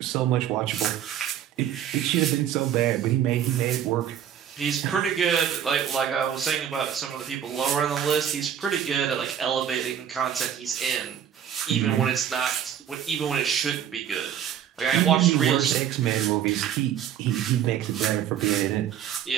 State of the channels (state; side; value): quieter; left; 9.5 dB